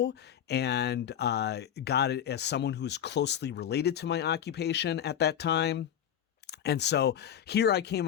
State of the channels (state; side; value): quieter; right; 9.7 dB